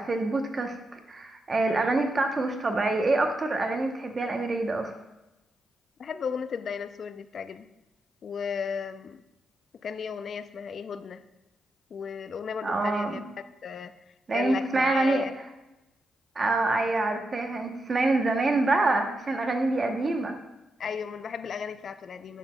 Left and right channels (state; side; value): normal; both; correlation 0.85